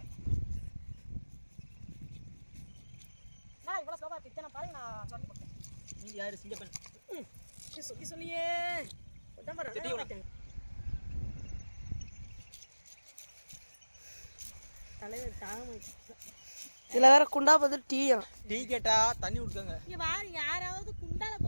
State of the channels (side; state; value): both; inverted; correlation -1.00